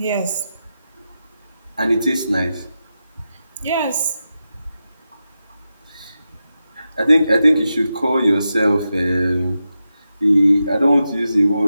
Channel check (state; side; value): inverted; both; correlation -0.89